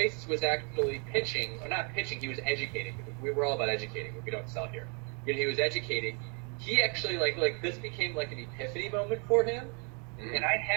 was actually pitching, or not pitching, he was educating. We were all about educating, but we don't sell here. He was educating. He actually like this became like an epiphany moment for him. And I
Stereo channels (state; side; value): quieter; left; 37.2 dB